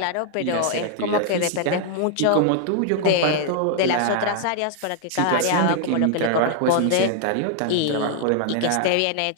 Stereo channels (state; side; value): different; both; correlation 0.00